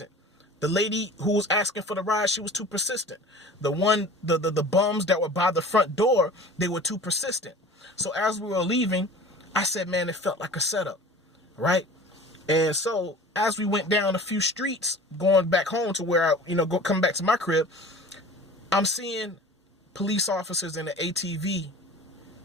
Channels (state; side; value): normal; both; correlation 0.42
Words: The lady who was asking for the ride, she was too persistent. The bums that were by the front door, they were too persistent. So as we were leaving, I said, man, it felt like a setup, right? And so as we went down a few streets, going back home to where come back to my crib, I'm seeing police officers in the ATV